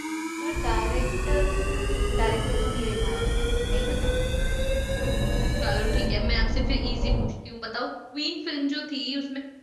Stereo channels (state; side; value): identical; both; correlation 1.00